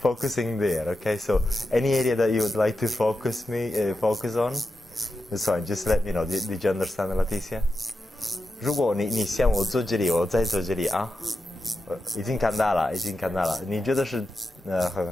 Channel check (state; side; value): normal; both; correlation 0.89